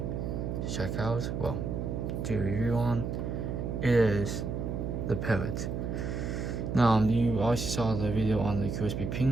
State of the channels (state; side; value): noise; right; hum, 3 dB below the sound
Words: check out, well, to review on. It is the Parrot. Now, you already saw the video on the Qsp